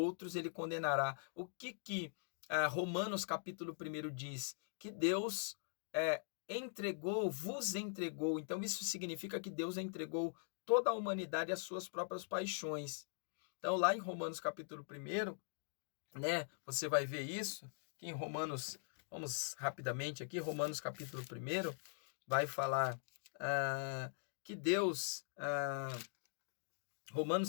ele condenará. O que Romanos capítulo 1 diz? Que Deus vos entregou. Então, isso significa que Deus entregou toda a humanidade às suas próprias paixões. Então, lá em Romanos capítulo 1, né, você vai ver isso, que em Romanos, vamos rapidamente aqui, Romanos capítulo 1, vai falar que Deus,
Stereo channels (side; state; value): right; silent; digital silence